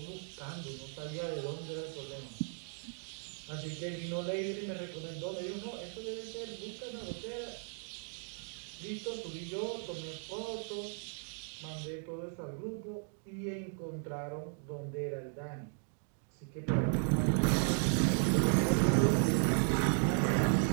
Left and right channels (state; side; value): silent; left; 54 dB below the other